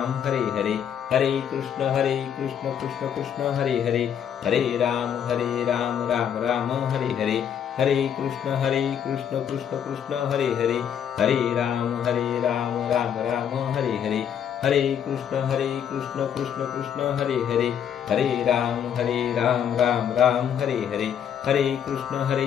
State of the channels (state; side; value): quieter; right; 8.7 dB